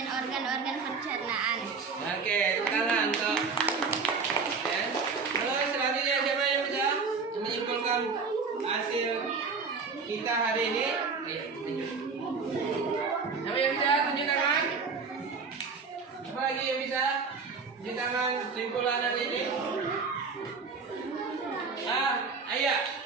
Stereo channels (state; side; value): quieter; left; 4.9 dB